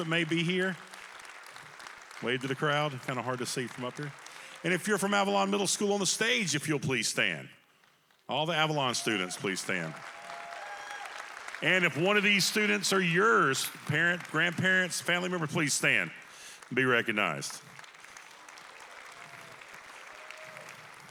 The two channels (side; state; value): both; identical; correlation 1.00